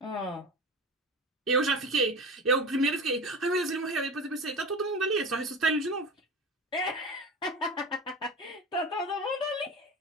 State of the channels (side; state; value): both; normal; correlation 0.30